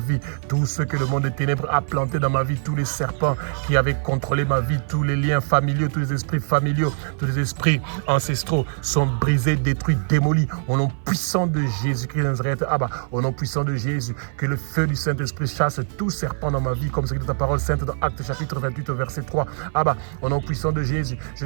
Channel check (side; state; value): left; silent; 56 dB below the other